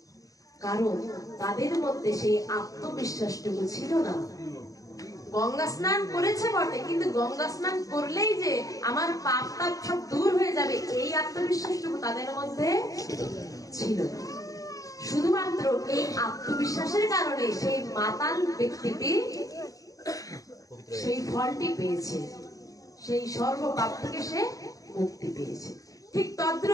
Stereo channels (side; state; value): right; late; 0.17 ms